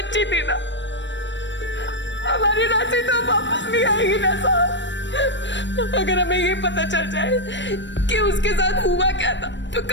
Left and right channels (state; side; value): late; right; 0.53 ms